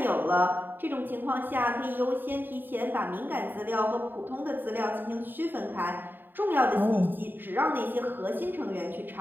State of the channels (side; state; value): left; late; 0.093 ms